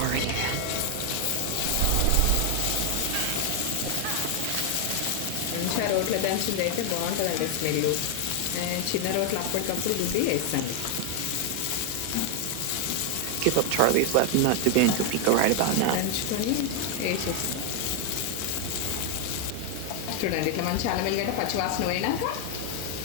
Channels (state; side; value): different; both; correlation 0.00